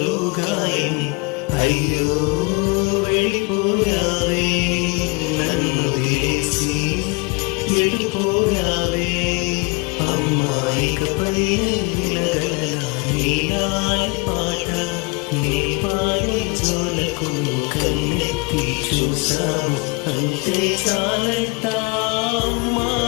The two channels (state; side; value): quieter; right; 28.9 dB